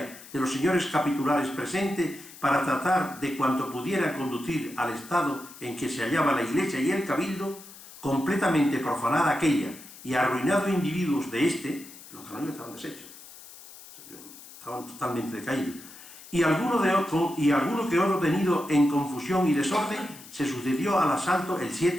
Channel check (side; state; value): left; noise; hiss, 18 dB below the sound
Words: de los señores capitulares presentes para tratar de cuanto pudiera conducir al estado en que se hallaba la Iglesia y el Cabildo, completamente profanada aquella y arruinados individuos de los canónigos estaban deshechos, estaban totalmente decaídos, y alguno que otro tenido en confusión y desorden, se sucedió al asalto el